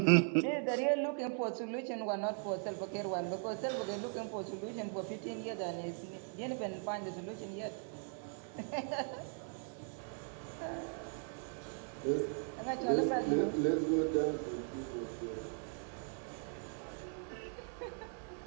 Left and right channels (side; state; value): left; silent; 52 dB below the other